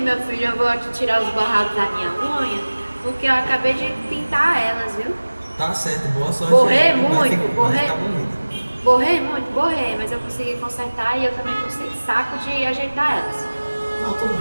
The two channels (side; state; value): both; inverted; correlation -1.00